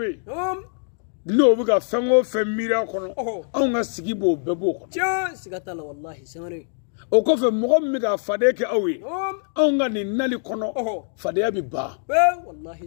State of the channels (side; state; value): right; silent; digital silence